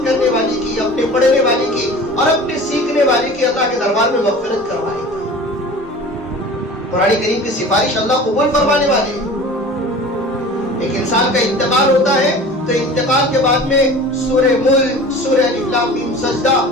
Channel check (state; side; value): normal; both; correlation 0.40